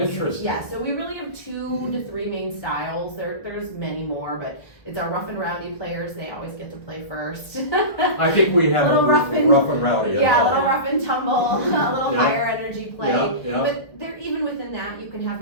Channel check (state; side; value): late; right; 1.6 ms